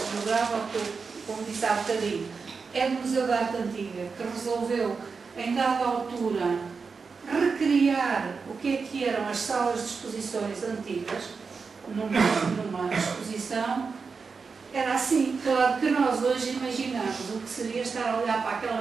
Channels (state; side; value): quieter; left; 5.0 dB